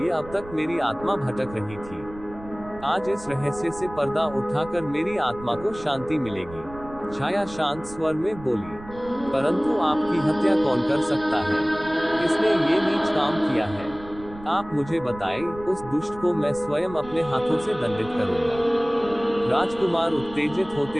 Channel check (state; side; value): noise; right; rumble, 17 dB below the sound